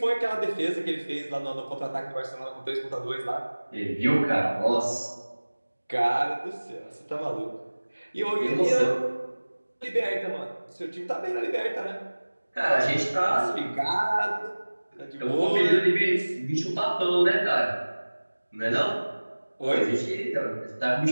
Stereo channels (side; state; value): both; inverted; correlation -1.00